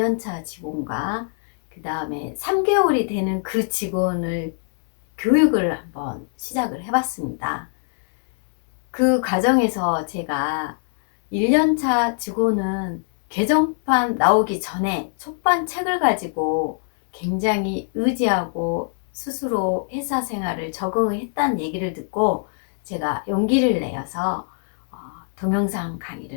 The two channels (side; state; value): right; silent; digital silence